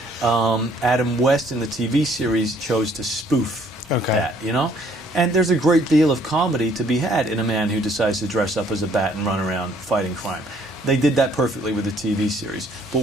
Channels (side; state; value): both; normal; correlation 0.62